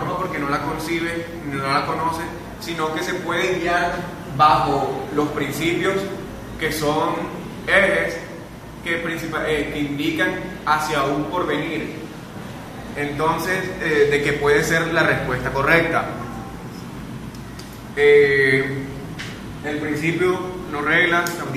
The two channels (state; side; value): identical; both; correlation 1.00